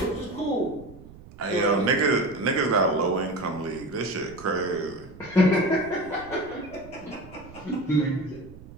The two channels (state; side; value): noise; right; rumble, 19 dB below the sound